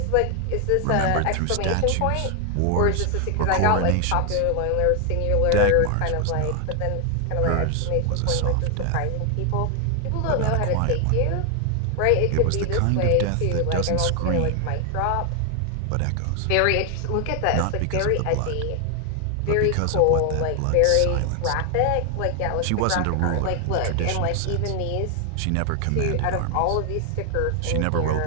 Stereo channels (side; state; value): both; different; correlation 0.00